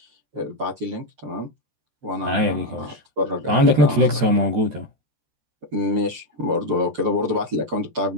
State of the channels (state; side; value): late; left; 13 ms